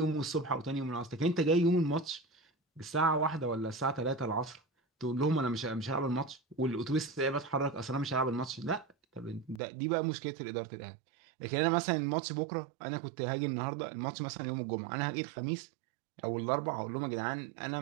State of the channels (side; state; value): left; drops out; at 9.6 s